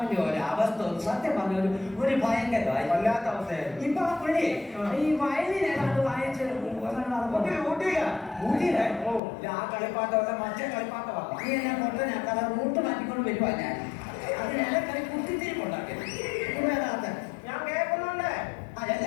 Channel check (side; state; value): right; drops out; at 9.2 s